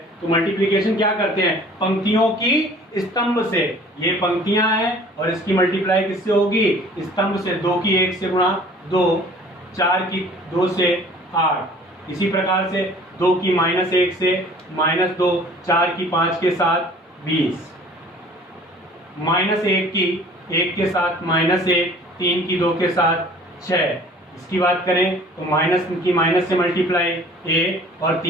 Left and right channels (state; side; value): normal; both; correlation 0.50